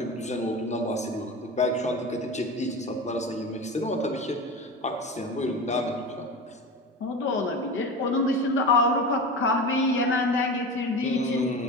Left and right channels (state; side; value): normal; both; correlation 0.29